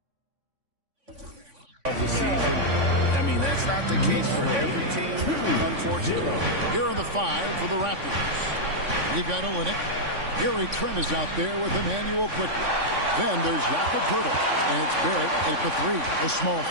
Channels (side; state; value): left; late; 3.5 ms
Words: of the season. I mean, that's not the case for every team, unfortunately. Here are the 5 for the Raptors. We've got Olynyk. Gary Trent is out there with Emmanuel quickly. Then there's Jakob Poeltl, and it's Barrett at the 3, the small